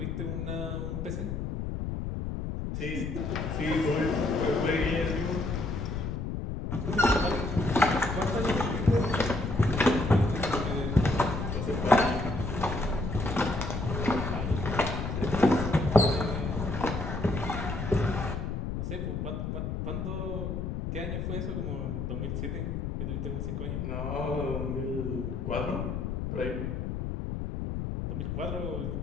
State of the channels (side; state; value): left; noise; rumble, 3 dB below the sound